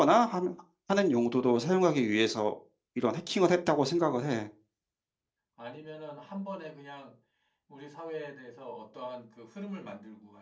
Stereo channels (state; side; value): identical; both; correlation 1.00